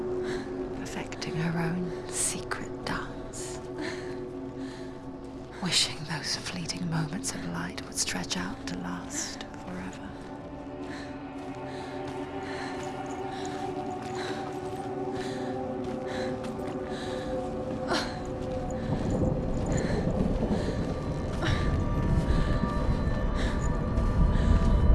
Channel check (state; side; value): identical; both; correlation 1.00